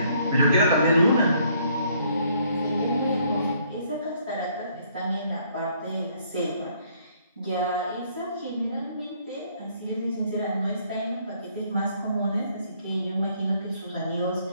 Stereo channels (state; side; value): inverted; both; correlation -0.65